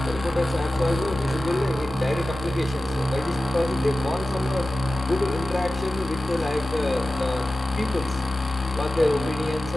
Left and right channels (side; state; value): both; normal; correlation 0.95